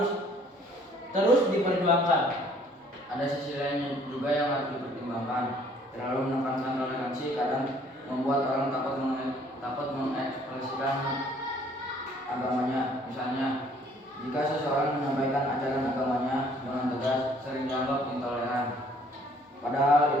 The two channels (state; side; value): normal; both; correlation 0.59